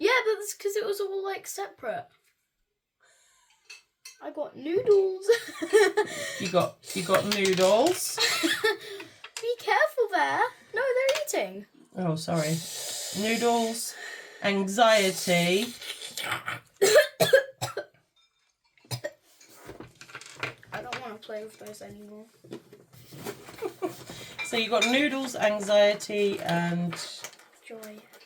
but that's because it was all like separate. I got noodles. You got noodles. Be careful there. No, they're eating. Oh, sorry. Noodles, anxiety. I don't want to play with those anymore. So you got noodles, anxiety, and Joy.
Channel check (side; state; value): both; identical; correlation 1.00